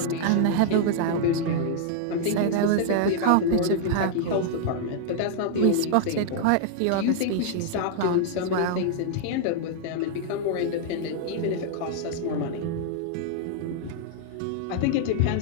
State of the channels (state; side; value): different; both; correlation -0.01